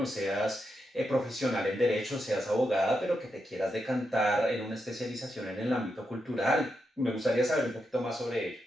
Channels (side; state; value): both; normal; correlation 0.85